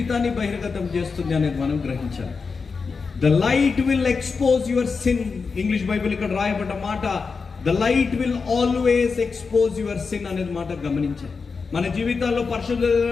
బహిర్గతం చేస్తుంది అనేది మనం గ్రహించాలి. The light will expose your sin. English Bible ఇక్కడ రాయబడ్డ మాట, the light will always expose your sin అనేది మాట గమనించాలి. మన జీవితాల్లో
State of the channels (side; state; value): right; quieter; 4.9 dB